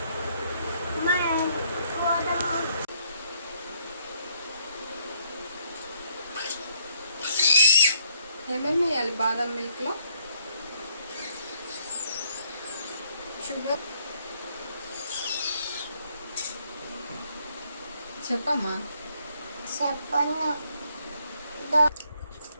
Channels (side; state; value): both; inverted; correlation -0.67